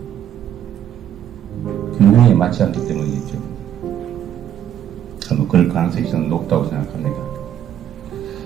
균형에 맞지 않기 때문이겠죠. 그럴 가능성이 저는 높다고 생각합니다.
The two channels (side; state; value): left; quieter; 10.4 dB